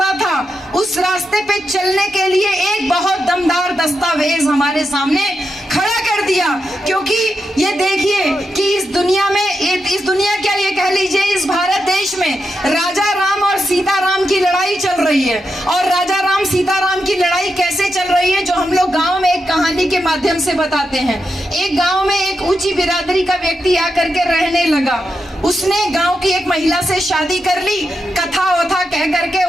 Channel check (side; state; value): both; normal; correlation 0.86